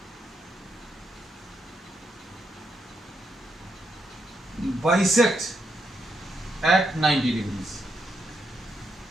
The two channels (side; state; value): both; normal; correlation 0.80